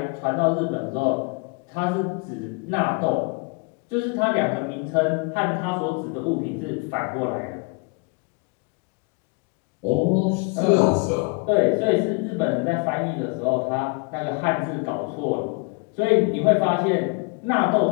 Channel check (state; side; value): quieter; right; 31.9 dB